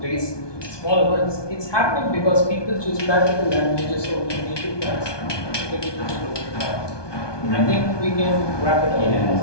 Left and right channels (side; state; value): right; late; 1.2 ms